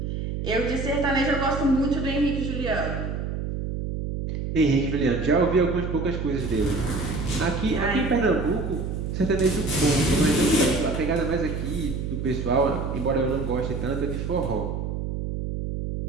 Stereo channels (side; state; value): right; noise; hum, 4 dB below the sound